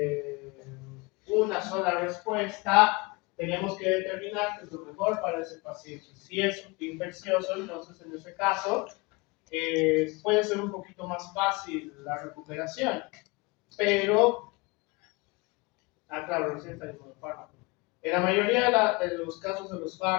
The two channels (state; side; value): quieter; right; 26.2 dB